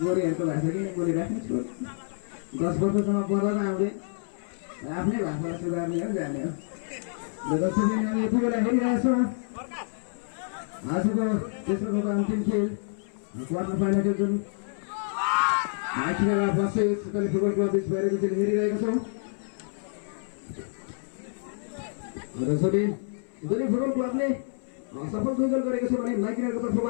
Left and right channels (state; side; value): silent; right; 59 dB below the other